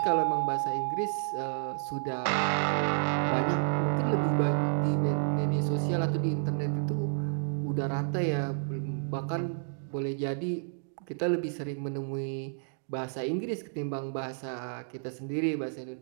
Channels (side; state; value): left; silent; digital silence